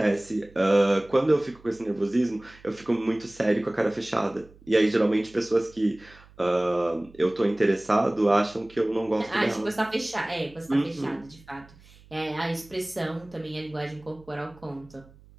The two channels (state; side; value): noise; right; hum, 25 dB below the sound